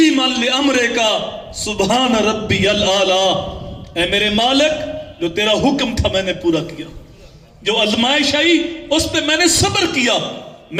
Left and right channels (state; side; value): identical; both; correlation 1.00